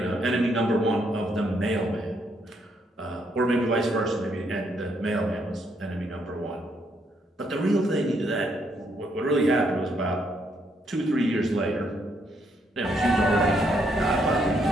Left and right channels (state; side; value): normal; both; correlation 0.74